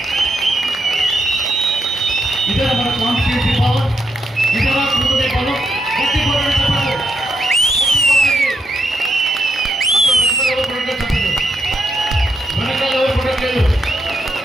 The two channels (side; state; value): both; normal; correlation 0.80